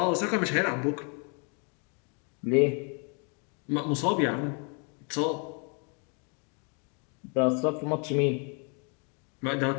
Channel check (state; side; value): quieter; right; 37.3 dB